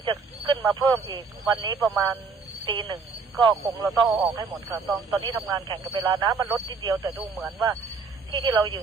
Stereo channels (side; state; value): left; quieter; 4.8 dB